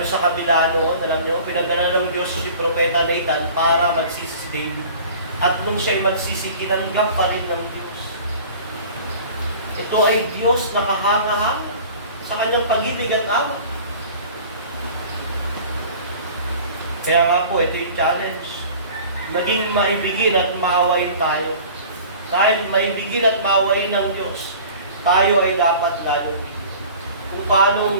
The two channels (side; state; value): both; inverted; correlation -0.44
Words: sa kabila noon, alam niyo, pinadala ng Diyos si Propeta Nathan para magsisi si David. At nung siya'y magsisi, kinanggap pa rin ng Diyos. Ito ay Diyos na kahanga-hanga sa kanyang pag-ibig at awa. Kaya nga po, ito yung challenge. Naging maibigin at maawain tayo. Dahil maibigin at maawain ng Diyos, tayo ay dapat galong. Kung